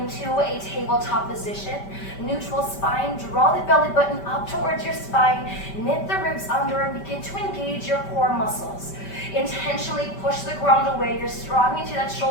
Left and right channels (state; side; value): late; right; 5.1 ms